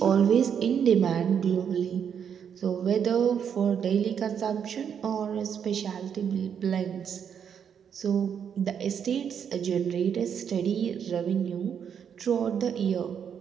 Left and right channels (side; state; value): left; quieter; 7.9 dB